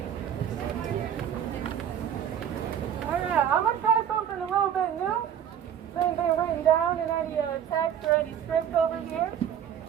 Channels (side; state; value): left; quieter; 9.4 dB